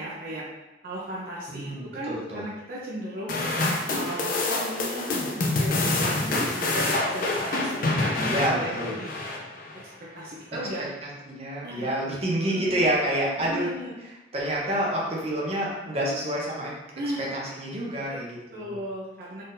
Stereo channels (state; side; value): normal; both; correlation 0.32